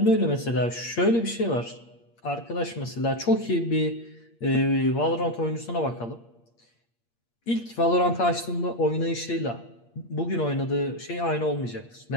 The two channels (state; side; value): late; right; 8.6 ms